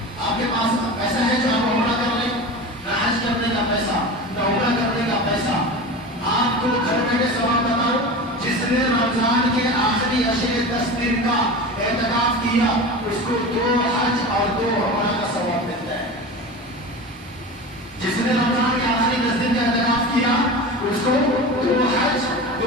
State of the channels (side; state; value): both; normal; correlation 0.30